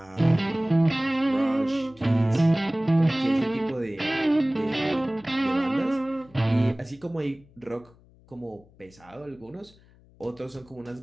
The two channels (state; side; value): noise; left; hum, 28 dB below the sound